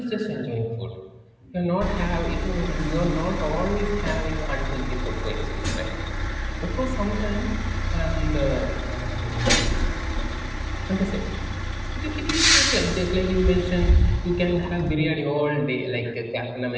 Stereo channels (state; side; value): identical; both; correlation 1.00